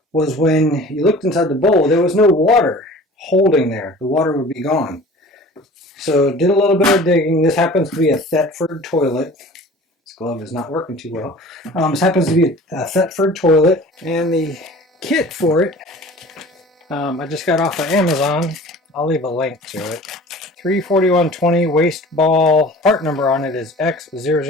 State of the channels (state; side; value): normal; both; correlation 0.44